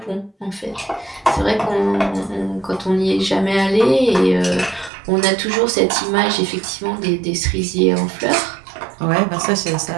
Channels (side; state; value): left; drops out; at 4.9 s